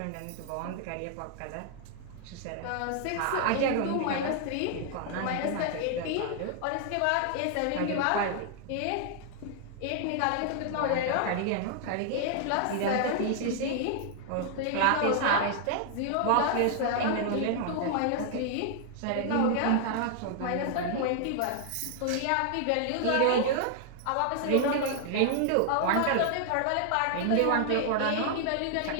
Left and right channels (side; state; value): both; different; correlation -0.01